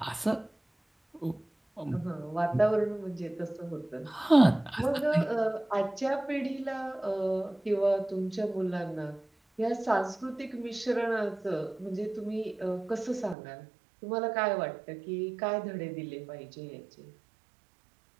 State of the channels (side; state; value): left; drops out; at 13.4 s